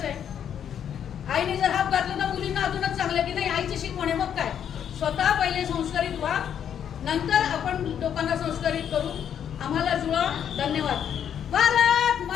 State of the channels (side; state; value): right; quieter; 8.9 dB